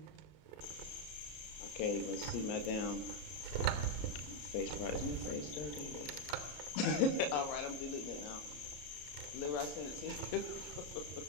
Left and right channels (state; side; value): late; right; 33 ms